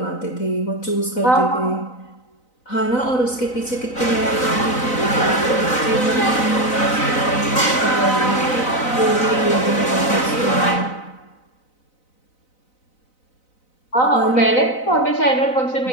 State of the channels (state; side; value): late; right; 4.0 ms